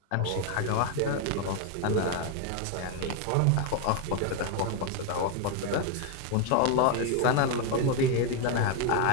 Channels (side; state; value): both; different; correlation 0.01